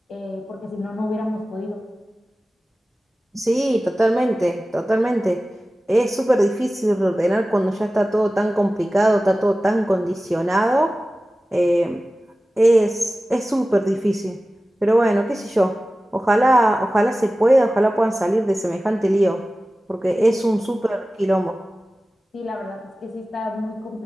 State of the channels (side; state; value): both; normal; correlation 0.96